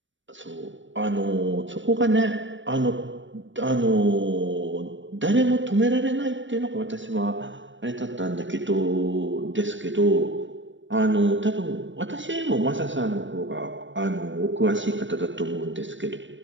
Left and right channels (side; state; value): left; late; 0.55 ms